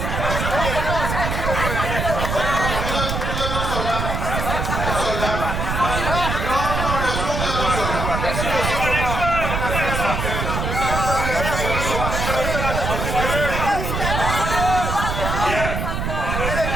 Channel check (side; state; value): right; noise; rumble, 2 dB below the sound